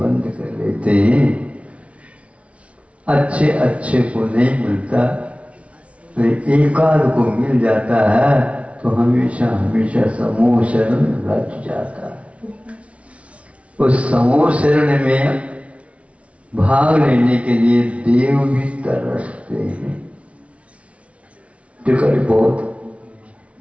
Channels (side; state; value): left; late; 0.063 ms